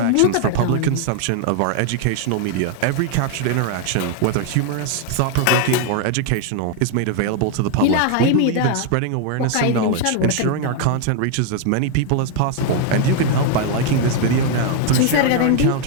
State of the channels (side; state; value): both; different; correlation 0.01